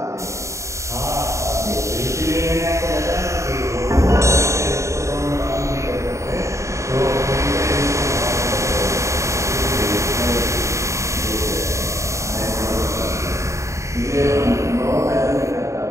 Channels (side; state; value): left; late; 0.14 ms